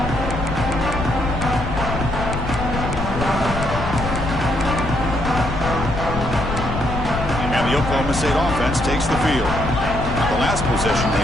Oklahoma State offense takes the field. The last possession, they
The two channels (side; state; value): left; noise; rumble, 5 dB below the sound